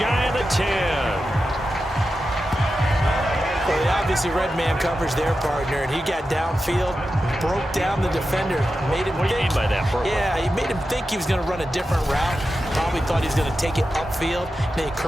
of the 10. Well, they obviously read man coverage their partner, and he got downfield, broke down the defender, made him What do you mean by that, Purple? Yeah, he made him think he was going to run a different route. Probably thought he was going to take it upfield, and then he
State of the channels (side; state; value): both; normal; correlation 0.91